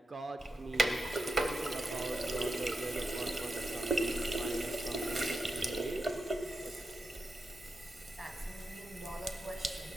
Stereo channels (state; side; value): normal; both; correlation 0.88